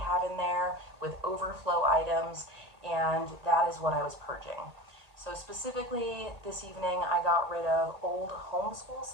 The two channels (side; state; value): left; late; 1.8 ms